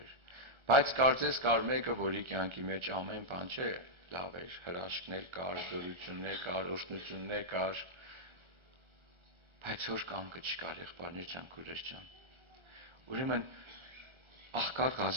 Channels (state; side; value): late; left; 1.3 ms